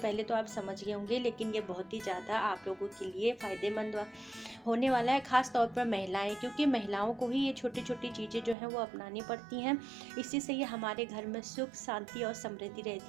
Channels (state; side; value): drops out; left; at 8.6 s